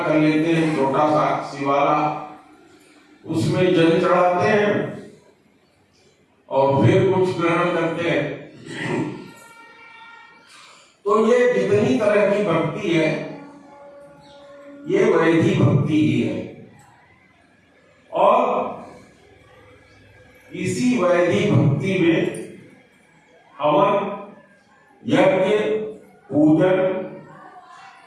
कर लेते हैं, छोटा सा शिवाला, उसमें जल चढ़ाते हैं और फिर कुछ ग्रहण करते हैं। तो ये जितनी तरह की भक्ति है, ये वैधी भक्ति ही है। और इसी वैधी भक्ति में हवन, यज्ञ, पूजन,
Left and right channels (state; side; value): identical; both; correlation 1.00